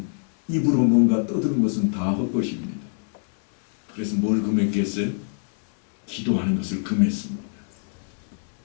입으로 뭔가 떠드는 것은 다 헛것입니다. 그래서 뭘 금했겠어요? 기도하는 것을 금했습니다.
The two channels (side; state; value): right; silent; 59 dB below the other